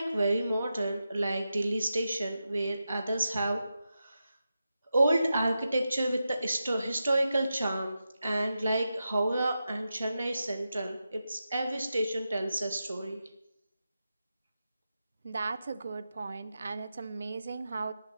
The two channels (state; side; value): inverted; both; correlation -0.90